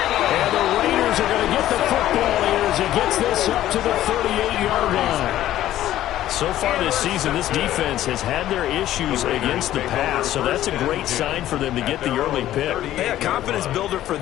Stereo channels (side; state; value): right; quieter; 13.3 dB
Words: And the Raiders are going to get the football here as he gets this up to the 38-yard line. So far this season, this defense has had their issues against the pass, so that's a great sign for them to get the early pick. Hey, a confidence builder for